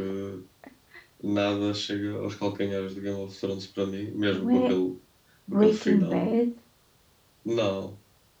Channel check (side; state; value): both; identical; correlation 1.00